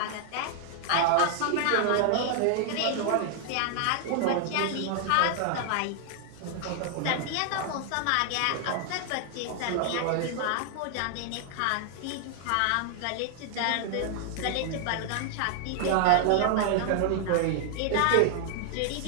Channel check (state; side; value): different; both; correlation 0.00